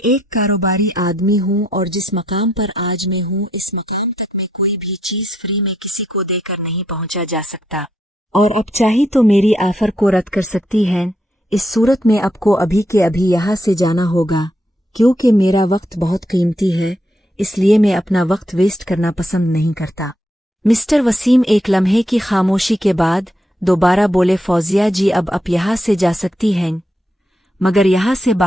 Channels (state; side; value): normal; both; correlation 0.78